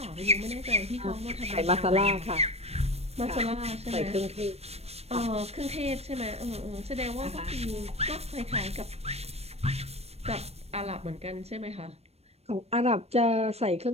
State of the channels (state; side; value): late; left; 0.31 ms